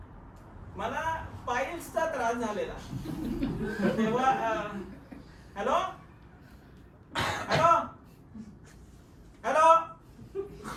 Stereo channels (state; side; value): identical; both; correlation 1.00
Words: मला पाईल्सचा त्रास झालेला. तेव्हा हॅलो हॅलो हॅलो